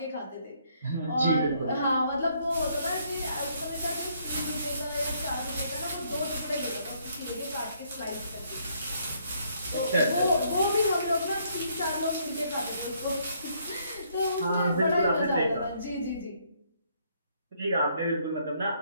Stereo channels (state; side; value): inverted; both; correlation -0.69